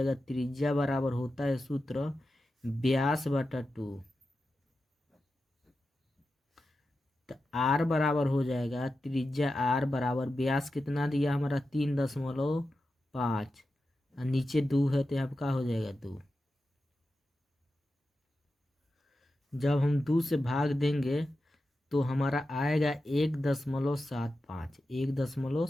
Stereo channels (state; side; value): normal; both; correlation 0.91